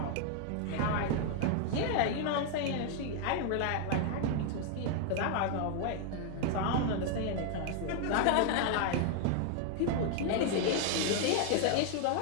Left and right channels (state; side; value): different; both; correlation 0.00